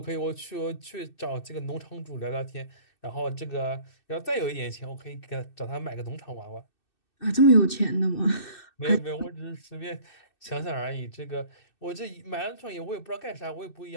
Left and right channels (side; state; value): right; late; 2.6 ms